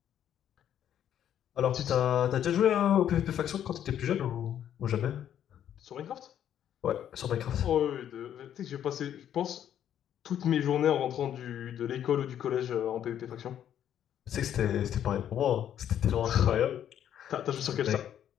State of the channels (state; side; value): quieter; right; 10.2 dB